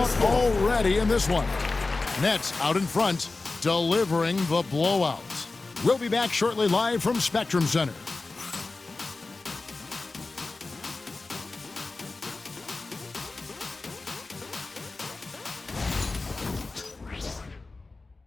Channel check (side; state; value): right; quieter; 3.5 dB